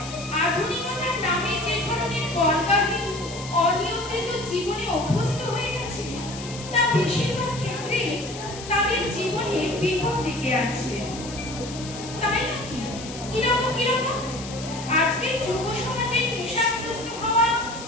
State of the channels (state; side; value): noise; left; hiss, 12 dB below the sound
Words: আধুনিকতার নামে যে ধরনের বলবাহী অনিয়ম বেশিরভাগ ক্ষেত্রে তাদের জীবনে বিপদ ডেকে আছে। তাই নাকি? কিরকম কিরকম? আজকে যুব সমাজে নেশাগ্রস্ত হওয়া,